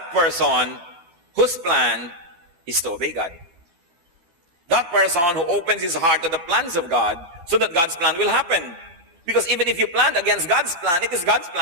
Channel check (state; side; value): late; left; 12 ms